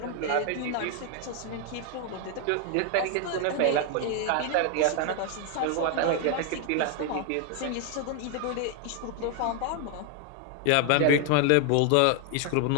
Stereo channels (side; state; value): both; different; correlation 0.01